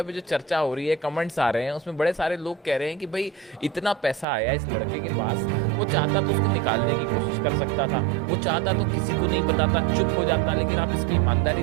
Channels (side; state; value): left; drops out; at 4.2 s